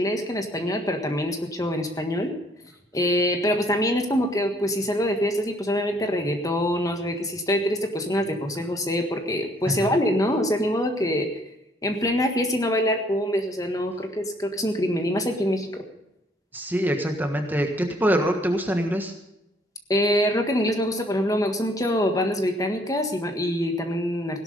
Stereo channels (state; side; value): normal; both; correlation 0.63